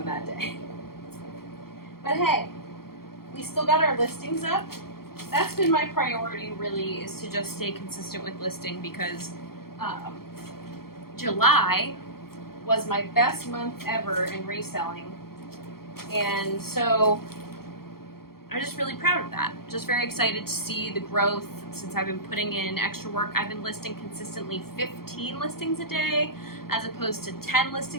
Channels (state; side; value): late; right; 0.94 ms